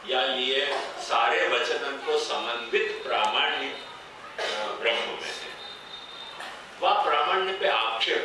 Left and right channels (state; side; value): identical; both; correlation 1.00